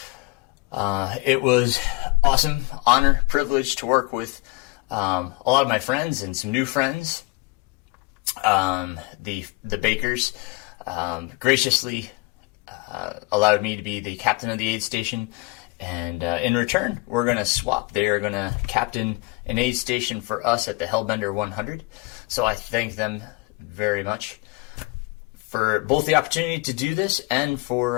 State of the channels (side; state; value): right; quieter; 25.9 dB